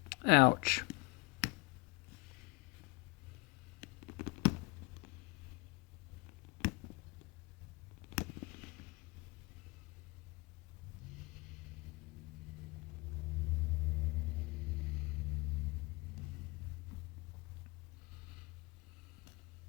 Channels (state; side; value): quieter; right; 25.5 dB